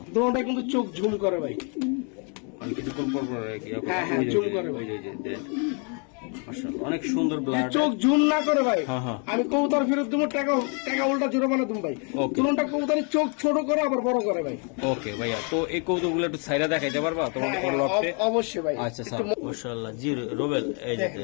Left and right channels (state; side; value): quieter; right; 37.8 dB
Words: দোনোটা কিন্তু চোখ ঝুম করে ভাই, আমি কিছুক্ষণ পর পর আর কি হ্যাঁ, হ্যাঁ, ওই যে- zoom করে ভাই। ওই যে দেন। মাশাআল্লাহ, অনেক সুন্দর ব্লাড। চোখ ঝুম না করে ভাই, হ্যাঁ, হ্যাঁ। আমি কবুতর ফেরত দেবো, টাকা টাকা উল্টা জোরাবানা তুমি ভাই, Okay. দোনোটা কবুতরের চোখ ছোট করে আবার বড় করে ভাই, ওকে ভাইয়া, তো এই কৌতুকগুলো একটু সাইডা দেখাইতে পারবা তোমাদের হ্যাঁ, লটে? অবশ্যই ভাই, আচ্ছা একটু স্যার, মাশাআল্লাহ। জি রোবেল এই যে দেখেন